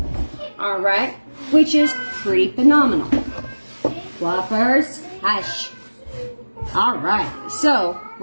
All right, which is pretty phenomenal. Fluffers, hush. All right, so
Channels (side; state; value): both; inverted; correlation -1.00